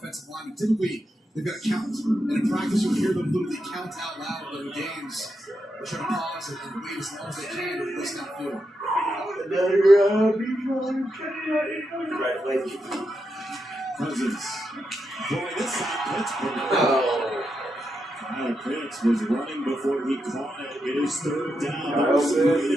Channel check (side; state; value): both; normal; correlation 0.85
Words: line. Typically, they've got to count. And in practice, you'll hear them literally count out loud, but in games, they're trying to pause it and wait as long as they can to listen downfield. Congratulations. Cousins. Boy, this side Pittsburgh. Kyle Pitts was running before he caught it. It is third down. Right